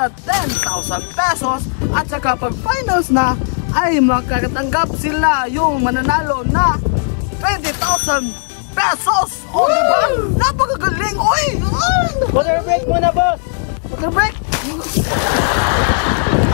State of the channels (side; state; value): right; silent; 61 dB below the other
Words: 10,000 pesos. At saka pag finals na ay makakatanggap sila yung mananalo na 20,000 pesos. O, di ba? Napakagaling, oy! Water break muna, boss. Water break?